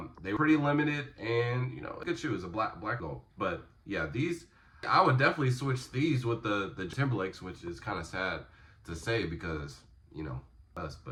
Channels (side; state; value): both; identical; correlation 1.00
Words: they were pretty limited, and you know, good shoes, a black gold. But yeah, these, I would definitely switch these with the Timberlakes, which is kind of sad to say because, you know, us,